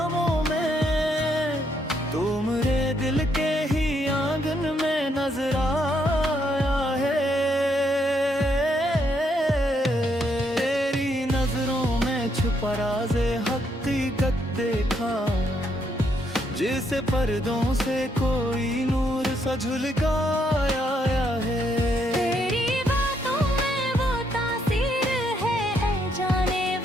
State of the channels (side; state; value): both; normal; correlation 0.74